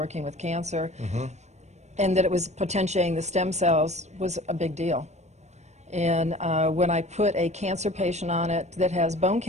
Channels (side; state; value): left; late; 0.33 ms